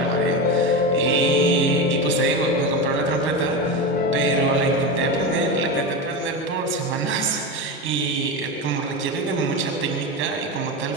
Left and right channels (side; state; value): both; normal; correlation 0.20